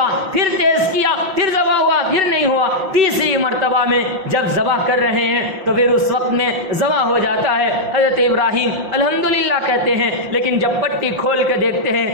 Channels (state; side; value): late; left; 5.8 ms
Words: پھر تیز کیا, پھر ذبح ہوا, پھر نہیں ہوا. تیسری مرتبہ میں جب ذبح کر رہے ہیں تو پھر اس وقت میں ذبح ہو جاتا ہے. حضرت ابراہیم الحمدللہ کہتے ہیں, لیکن جب پٹی کھول کے دیکھتے ہیں